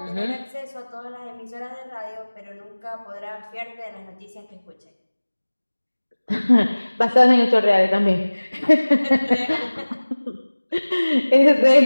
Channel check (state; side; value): inverted; both; correlation -1.00